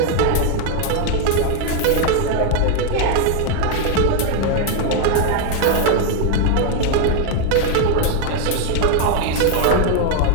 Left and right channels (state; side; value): different; both; correlation 0.01